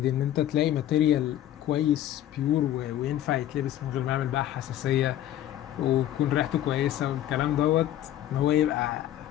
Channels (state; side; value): quieter; right; 12.3 dB